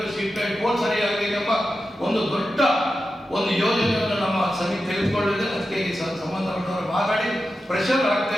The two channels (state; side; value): normal; both; correlation 0.91